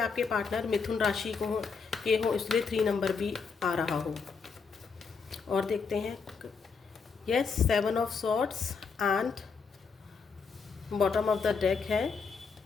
पार्टनर मिथुन राशि के हो, इसलिए 3 नंबर भी आ रहा हो। और देखते हैं, yes, 7 of swords and bottom of the deck है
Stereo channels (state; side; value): quieter; right; 5.3 dB